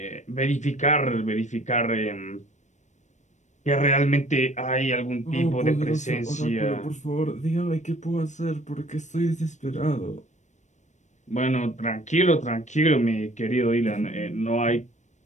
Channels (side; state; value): right; late; 0.34 ms